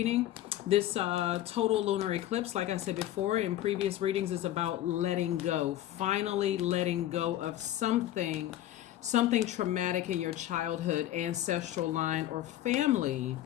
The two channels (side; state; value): right; quieter; 13.2 dB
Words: This total lunar eclipse, like I said before in previous readings, is about letting go. Finally letting go of something traumatic in your childhood, ancestral line, or family